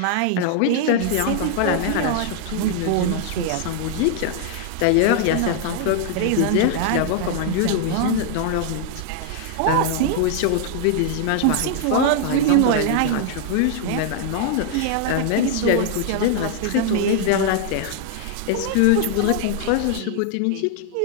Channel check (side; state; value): both; different; correlation 0.00